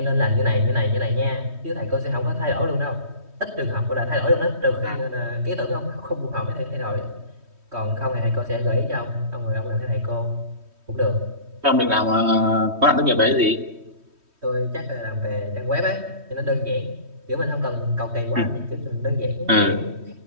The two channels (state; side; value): late; left; 3.1 ms